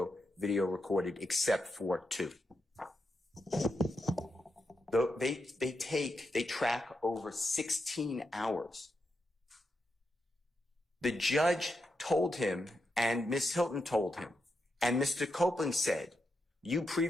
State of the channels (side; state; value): both; normal; correlation 0.85